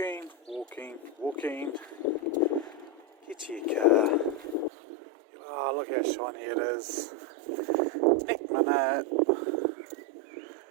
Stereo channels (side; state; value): left; drops out; at 4.7 s